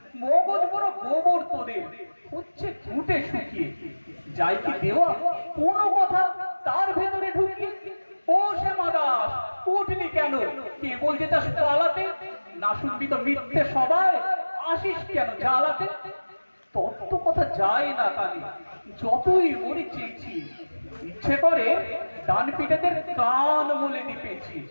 মগজ বড় গোবর তোদের, হচ্ছে ঘুটে শুকিয়ে। যাই কি দেওয়া কোনো কথা তার ভেতরে ঢুকিয়ে। ও শ্যামা দাস, উঠলি কেন? কেবল যেটা পালাতে, না শুনবি তো মিথ্যে সবাই, আসিস কেন জ্বালাতে? তত্ত্ব কথা যায় না কানে, যতই মরি চেয়েছি। ইচ্ছে করে ডান পিঠেদের কান মলে দিপেছি।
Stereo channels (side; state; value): both; inverted; correlation -1.00